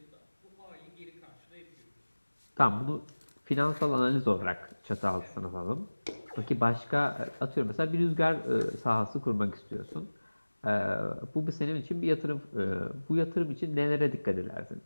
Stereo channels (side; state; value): both; inverted; correlation -1.00